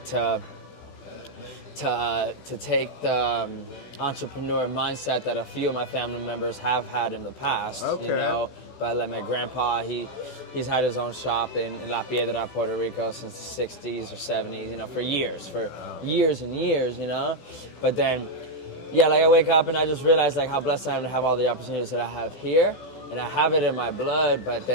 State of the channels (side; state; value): right; late; 16 ms